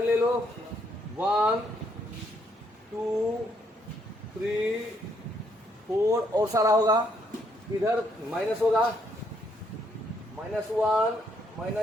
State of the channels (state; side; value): normal; both; correlation 0.72